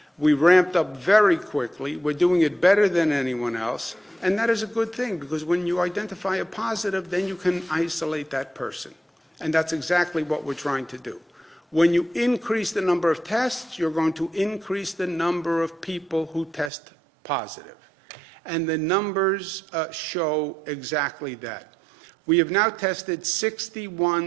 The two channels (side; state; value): left; drops out; at 16.7 s